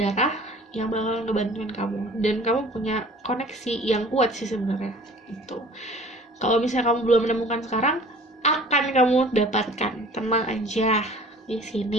yang bakal ngebantuin kamu, dan kamu punya koneksi yang kuat sih sebenarnya itu. Kalau misalnya kamu belum menemukan sekarang, akan kamu dapatkan, tenang aja di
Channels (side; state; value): both; normal; correlation 0.48